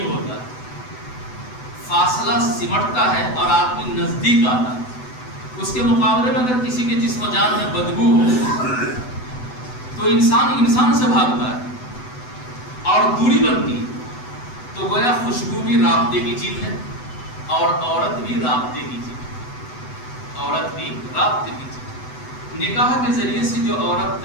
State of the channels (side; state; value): right; late; 8.0 ms